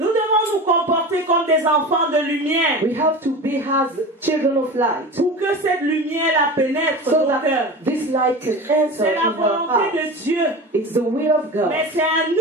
devons nous comporter comme des enfants de lumière we have to be as children of light, pour que cette lumière la pénètre so nos cœurs. that this light can enter C'est la in our volonté hearts. de Dieu, It's the will of God. mais c'est à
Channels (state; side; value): normal; both; correlation 0.30